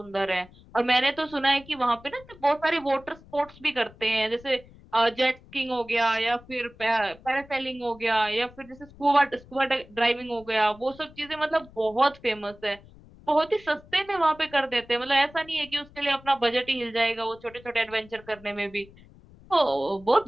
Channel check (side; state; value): left; noise; rumble, 23 dB below the sound